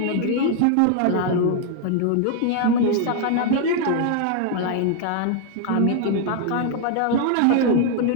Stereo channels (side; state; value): both; different; correlation 0.00